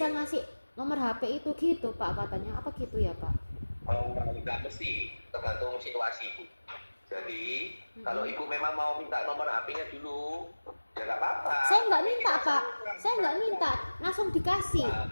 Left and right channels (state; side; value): inverted; both; correlation -1.00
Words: nomor HP itu gitu Pak," katanya. Apa gitu ya Pak? Oh, nggak mesti, tergantung situasi Bu. Jadi kalau ibu memang mau minta nomor HP-nya dulu, ya nggak apa-apa. Saya nggak minta Pak, saya nggak minta, langsung dikasih.